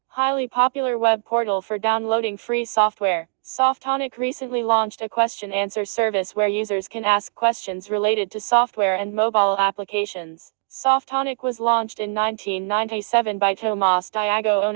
Highly popular web portal for downloading free software. Softonic recently launched a question-answer service where users can ask questions related to software and mobile applications. Softonic was launched in 1997 by Tomas Diago,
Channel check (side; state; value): left; silent; 63 dB below the other